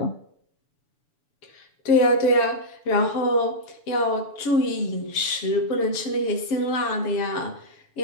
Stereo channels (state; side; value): late; right; 7.0 ms